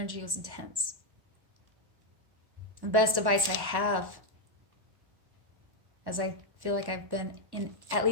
was intense. The best advice I have, as I feel like I've been in at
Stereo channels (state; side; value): late; left; 1.1 ms